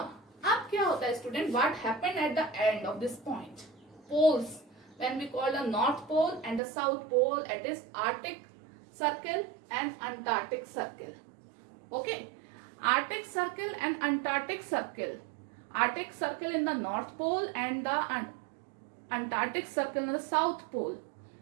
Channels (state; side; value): drops out; left; at 6.6 s